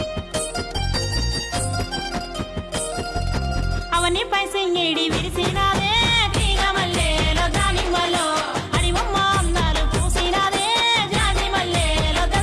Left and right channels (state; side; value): identical; both; correlation 1.00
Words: పైసంగేడి విరిసినాదే తీగ మల్లెలో దానిమ్మలో అడివమ్మ అందాలు పూసినాదే జాజి మల్లెలో